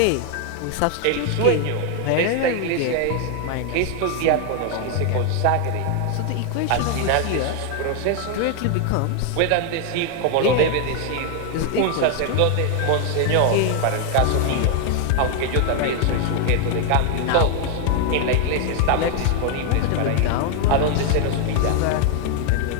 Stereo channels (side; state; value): both; different; correlation 0.00